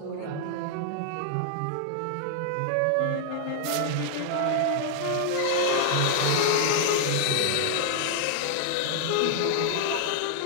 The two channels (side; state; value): both; different; correlation -0.01